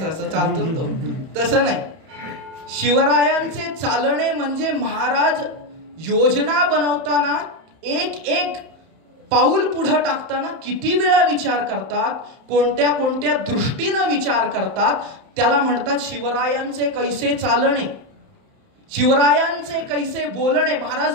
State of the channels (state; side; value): late; left; 31 ms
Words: चालतो तो, तसं नाही. शिवरायांचे चालणे म्हणजे महाराज योजना बनवताना एक पाऊल पुढे टाकताना किती वेळा विचार करतात, कोणत्या कोणत्या दृष्टीनं विचार करतात, त्याला म्हणतात शिवरायांचे कैसे चालणे. शिवरायांचे कैसे बोलणे,